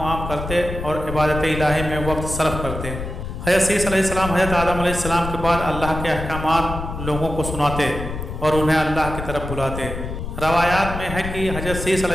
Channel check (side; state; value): left; noise; rumble, 7 dB below the sound